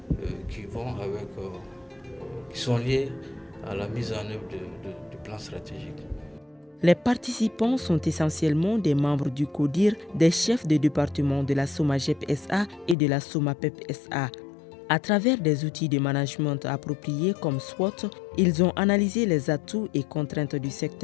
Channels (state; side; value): drops out; right; at 13.0 s